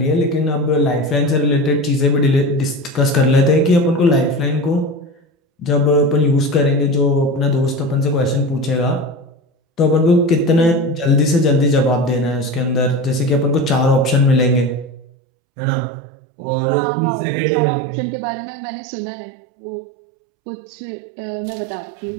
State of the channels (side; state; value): left; drops out; at 15.1 s